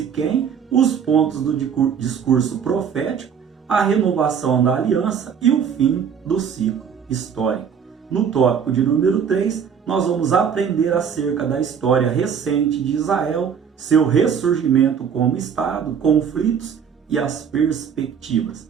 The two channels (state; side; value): quieter; left; 7.3 dB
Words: os pontos do discurso profético, a renovação da aliança e o fim do ciclo histórico. No tópico de número 3, nós vamos aprender acerca da história recente de Israel, seu ressurgimento como Estado, conflitos e as